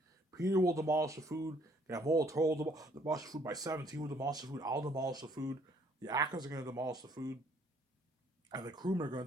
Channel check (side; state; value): both; normal; correlation 0.63